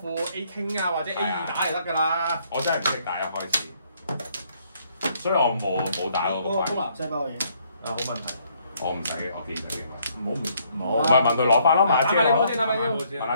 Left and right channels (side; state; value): both; inverted; correlation -0.68